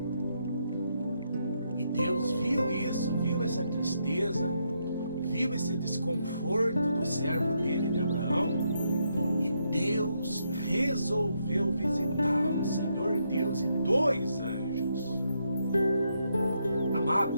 E Deus viu isso, viu essa tristeza, viu esse desconforto do servo dele, de Abraão, e Deus resolveu visitá-lo, Senhor Deus e 2 anjos.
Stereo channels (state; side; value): inverted; both; correlation -0.78